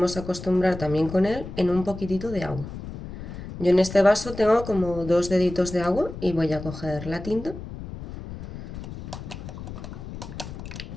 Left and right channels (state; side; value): noise; left; rumble, 10 dB below the sound